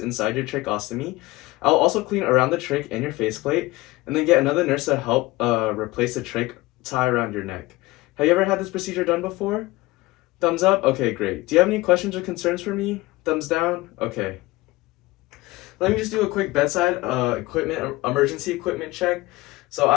inside your tracheostomy. I'll also clean around the trach and your faceplate, and then get another nurse to help replace the trach tie around your neck. Have you ever had this procedure done before? Thumbs up? Okay, great. Do you have any questions or concerns for me? Thumbs down? Okay. Let me just do a quick bedside emergency equipment check. So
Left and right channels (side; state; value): right; quieter; 20.3 dB